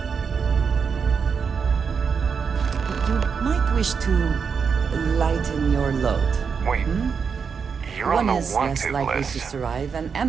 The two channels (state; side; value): quieter; left; 6.1 dB